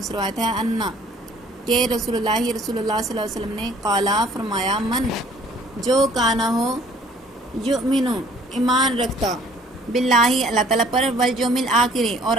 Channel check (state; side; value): normal; both; correlation 0.56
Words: سے روایت ہے انا کہ رسول اللہ صلی اللہ علیہ وسلم نے قالا فرمایا، من جو کانا ہو یؤمنو ایمان رکھتا باللہ اللہ تعالیٰ پر، والیوم الآخر اور